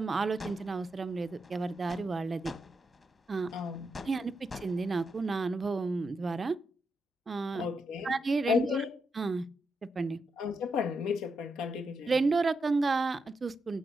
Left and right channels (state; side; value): normal; both; correlation 0.84